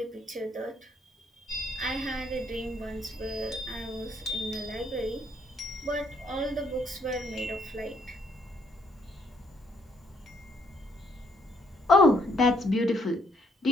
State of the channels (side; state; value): both; normal; correlation 0.71